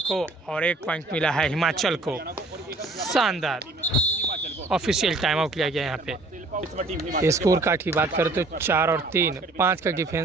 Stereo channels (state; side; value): quieter; left; 3.0 dB